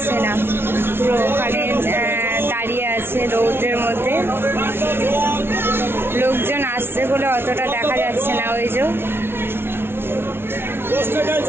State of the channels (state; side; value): late; left; 0.11 ms